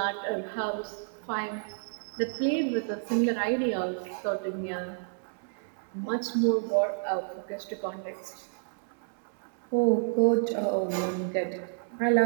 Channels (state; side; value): silent; left; 58 dB below the other